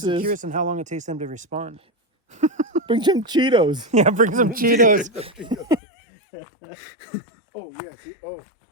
curious on how long it takes them to respond. bring some Cheetos. Yeah, bring some Cheetos. Oh yeah, see,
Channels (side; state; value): right; drops out; at 5.8 s